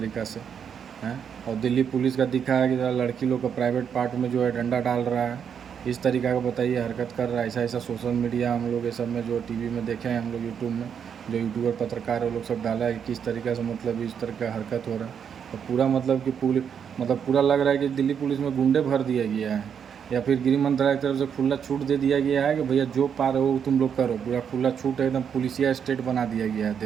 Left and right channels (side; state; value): left; quieter; 7.6 dB